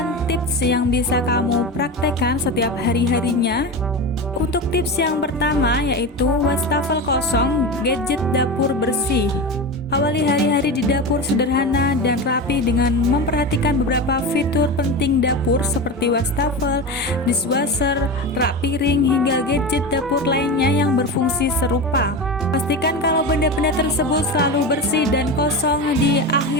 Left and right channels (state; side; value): normal; both; correlation 0.23